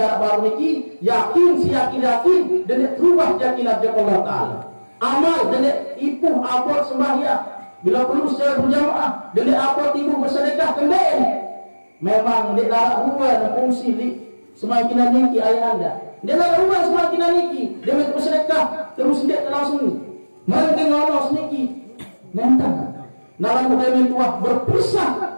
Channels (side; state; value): both; inverted; correlation -1.00